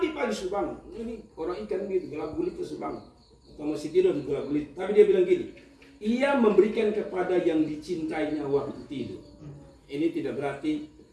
sudah bangun. Ini orang ikan gitu, gelap gulita sudah bangun. Atau masih tidur di gelap gulita. Tapi dia bilang gini, ia memberikan kepada yang dicintainya waktu tidur. Ini tidak berarti,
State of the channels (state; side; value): identical; both; correlation 1.00